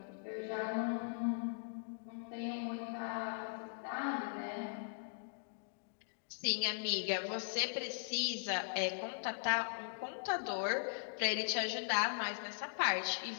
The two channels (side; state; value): right; silent; digital silence